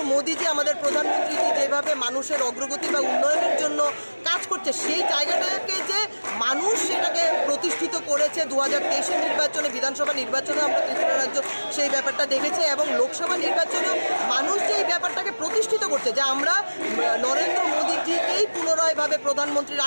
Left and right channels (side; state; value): both; inverted; correlation -1.00